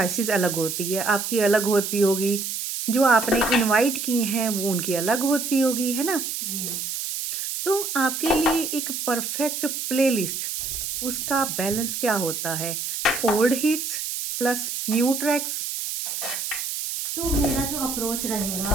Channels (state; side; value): noise; right; hiss, 4 dB below the sound